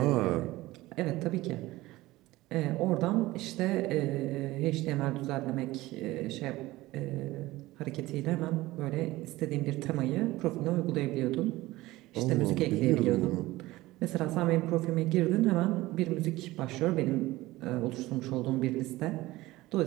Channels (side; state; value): left; quieter; 18.4 dB